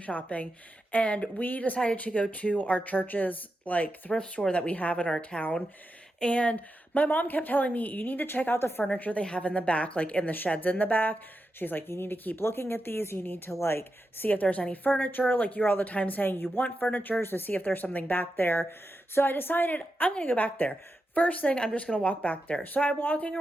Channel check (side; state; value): both; normal; correlation 0.88